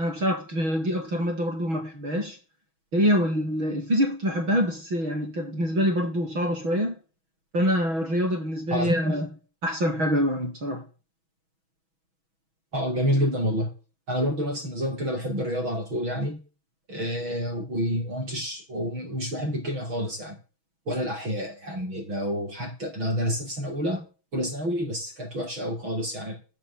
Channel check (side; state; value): left; late; 6.2 ms